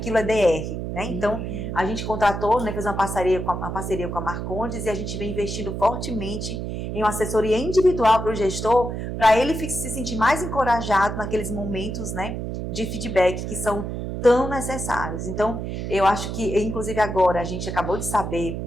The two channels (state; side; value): noise; right; hum, 5 dB below the sound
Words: é DR, né? Então, a gente contratou, né, fez uma parceria com a Marcondes e a gente vem investindo fortemente em uma assessoria individual para o gestor, para ele se sentir mais encorajado naqueles momentos, né, de feedback que são tão necessários. Então, eu acho que, inclusive agora, a gente acabou de saber